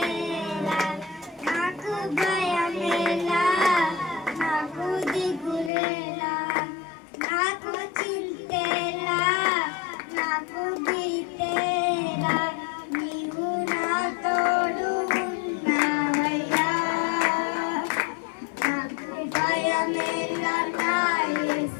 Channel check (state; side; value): drops out; right; at 5.7 s